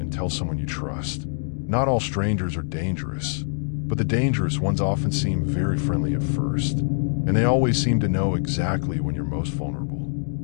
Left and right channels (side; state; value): right; silent; digital silence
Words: tell someone you trust. Not all strangers are dangerous, but the dangerous ones often seem very friendly at first, and they always seem to know exactly when you're most vulnerable.